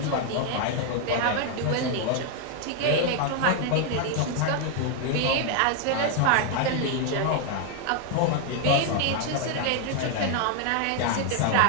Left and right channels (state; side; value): different; both; correlation 0.00